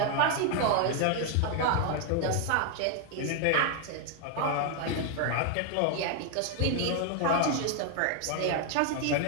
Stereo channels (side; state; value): both; different; correlation 0.01